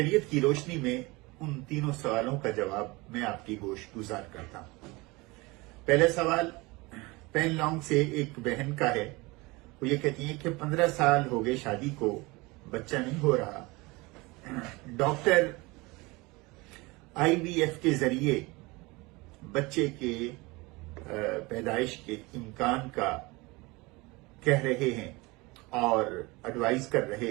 کی روشنی میں ان تینوں سوالوں کا جواب میں آپ کی گوش گزار کرتا ہوں۔ پہلا سوال پین لانگ سے ایک بہن کا ہے۔ وہ یہ کہتی ہیں کہ 15 سال ہو گئے شادی کو، بچہ نہیں ہو رہا۔ ڈاکٹر IVF کے ذریعے بچے کے پیدائش کے امکان کا کہہ رہے ہیں اور ایڈوائز کر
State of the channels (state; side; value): quieter; left; 23.8 dB